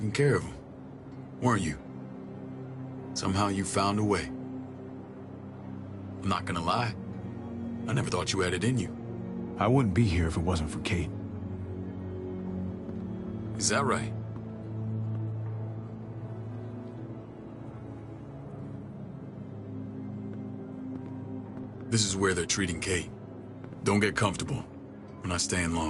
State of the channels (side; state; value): both; identical; correlation 1.00